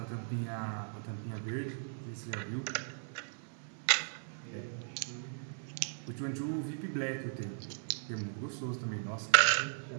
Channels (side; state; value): left; silent; digital silence